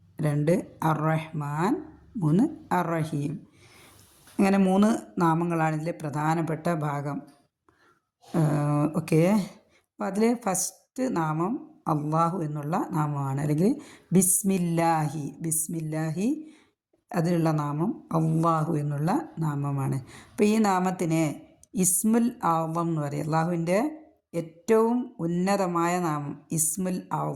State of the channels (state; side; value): identical; both; correlation 1.00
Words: 2 അർ-റഹ്മാൻ, 3 അർ-റഹീം. അങ്ങനെ 3 നാമങ്ങളാണ് ഇതിലെ പ്രധാനപ്പെട്ട ഭാഗം. ഓക്കെ, അപ്പോൾ അതിൽ ഫസ്റ്റ് നാമം അള്ളാഹു എന്നുള്ള നാമമാണ്, അല്ലെങ്കിൽ ബിസ്മില്ലാഹി അതിലുള്ള നാമം അള്ളാഹു എന്നുള്ള നാമമാണ്. അപ്പോൾ ഈ നാമത്തിനെ ഇസ്മുൽ അഅ്ളം എന്ന് പറയും. അള്ളാഹുവിൻ്റെ ഏറ്റവും ഉന്നതമായ നാമം ഇസ്മുൽ